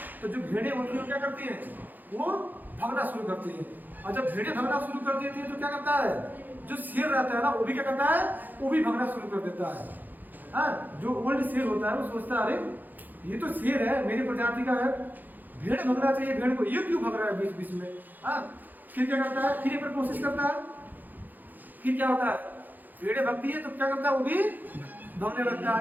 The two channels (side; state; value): left; late; 0.085 ms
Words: तो जो भेड़ें होती है क्या करती हैं, वो भागना शुरू करती हैं। और जब भेड़ें भागना शुरू कर देती है तो क्या करता है, जो शेर रहता है ना वो भी क्या करता है, वो भी भागना शुरू कर देता है। हाँ, जो ओल्ड शेर होता है वो सोचता है, अरे ये तो शेर है, मेरी प्रजाति का है, भेड़ भगना चाहिए, भेड़ को ये क्यों भग रहा है बीच बीच में। हाँ, फिर क्या करता है, फिर एक बार कोशिश करता है, फिर क्या होता है, भेड़ें भगती है तो क्या करता है, वो भी भगने लगता